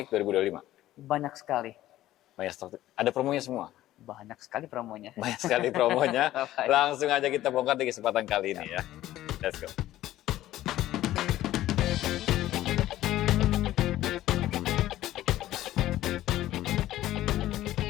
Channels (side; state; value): right; quieter; 14.4 dB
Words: 2025. Banyak sekali. Banyak stok. Ada promonya semua. Banyak sekali promonya. Banyak sekali promonya. Langsung aja kita bongkar di kesempatan kali ini ya. Let's go.